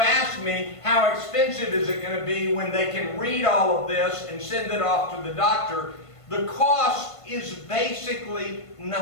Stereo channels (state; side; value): late; right; 1.5 ms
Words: ask me how expensive is it going to be when they can read all of this and send it off to the doctor, the cost is basically